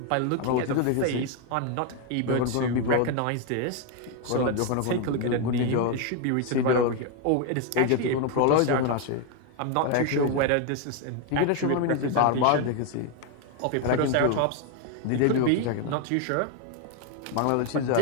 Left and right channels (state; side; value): different; both; correlation 0.01